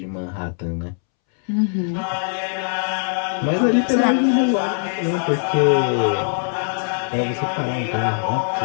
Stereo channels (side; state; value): right; silent; 65 dB below the other